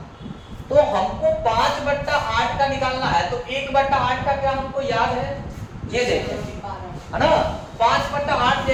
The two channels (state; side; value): identical; both; correlation 1.00